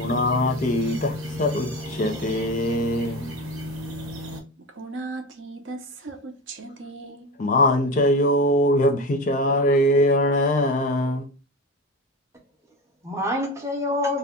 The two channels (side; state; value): both; normal; correlation 0.25